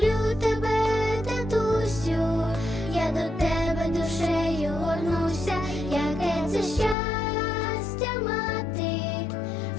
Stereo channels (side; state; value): right; drops out; at 7.0 s